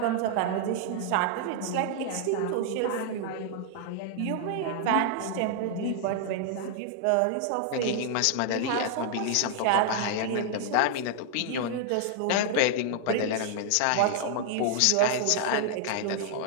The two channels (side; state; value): both; different; correlation 0.00